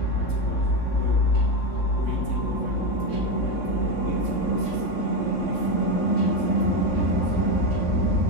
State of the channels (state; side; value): late; right; 3.6 ms